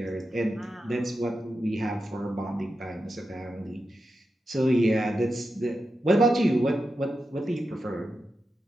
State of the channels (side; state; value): both; normal; correlation 0.89